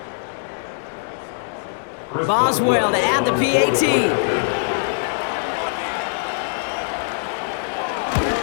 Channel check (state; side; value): silent; right; 64 dB below the other